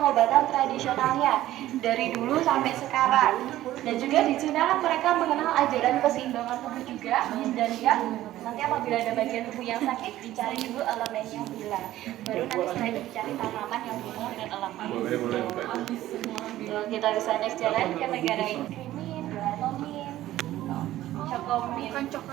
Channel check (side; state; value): left; quieter; 14.5 dB